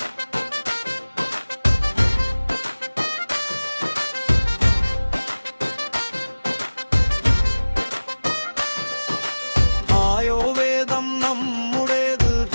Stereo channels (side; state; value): both; inverted; correlation -1.00